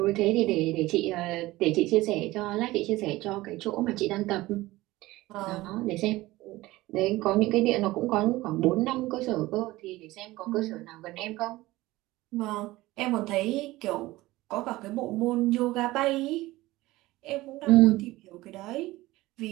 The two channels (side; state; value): left; quieter; 18.5 dB